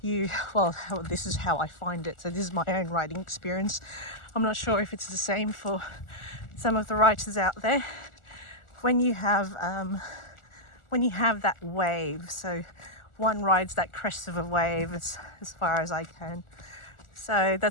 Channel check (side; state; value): right; late; 1.4 ms